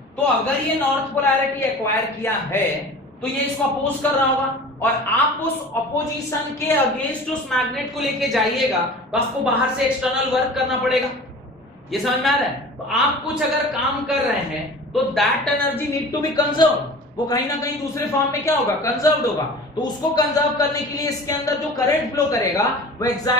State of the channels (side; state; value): both; normal; correlation 0.40